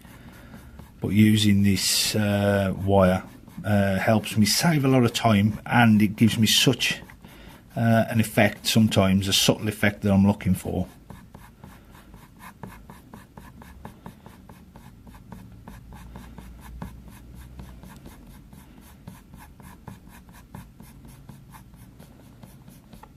but using this wire helps me save a lot of time, and it gives me such an effect, sometimes a subtle effect that I'm looking for.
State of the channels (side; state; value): both; identical; correlation 1.00